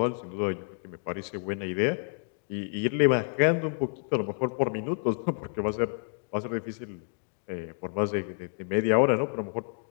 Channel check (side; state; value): right; silent; 58 dB below the other